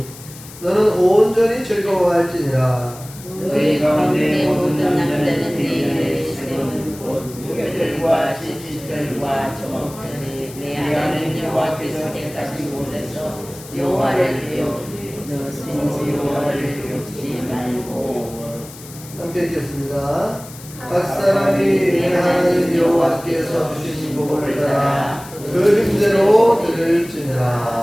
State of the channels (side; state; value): left; noise; hiss, 17 dB below the sound